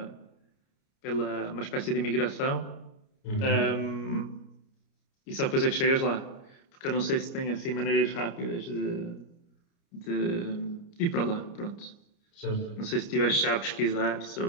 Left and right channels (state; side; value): late; right; 29 ms